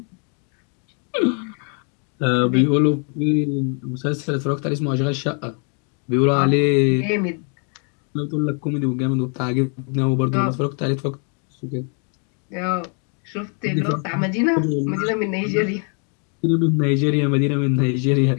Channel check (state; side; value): quieter; right; 39.8 dB